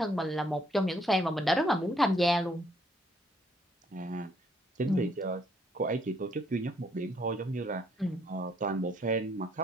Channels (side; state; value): both; normal; correlation 0.68